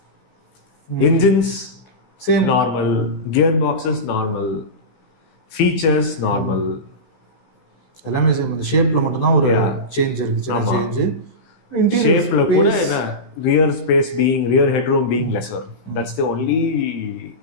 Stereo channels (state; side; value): late; right; 16 ms